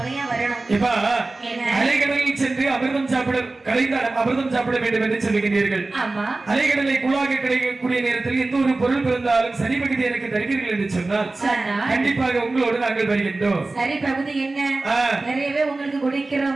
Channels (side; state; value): left; quieter; 3.2 dB